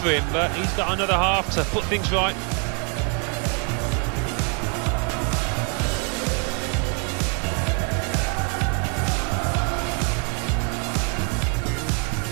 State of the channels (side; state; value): left; quieter; 37.3 dB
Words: for him. But he's got another half to put things right.